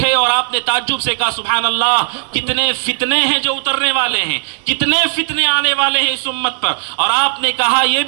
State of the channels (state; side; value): silent; left; digital silence